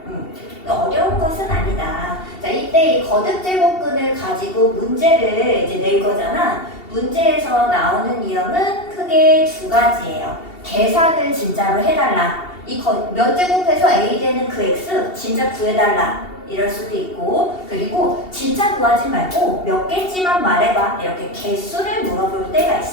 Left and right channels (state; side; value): late; right; 2.7 ms